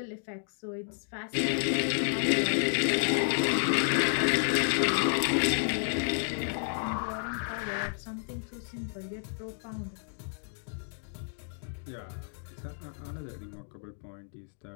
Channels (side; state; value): right; silent; digital silence